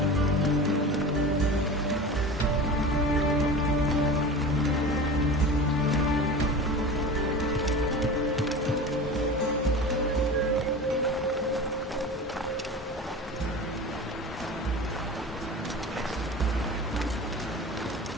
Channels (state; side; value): normal; both; correlation 0.33